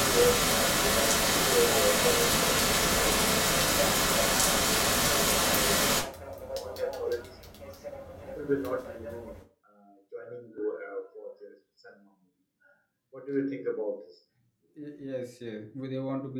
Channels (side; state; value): both; identical; correlation 1.00